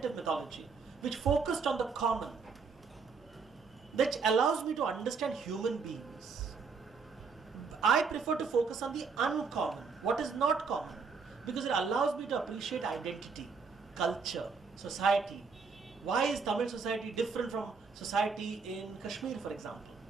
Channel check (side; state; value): left; quieter; 5.1 dB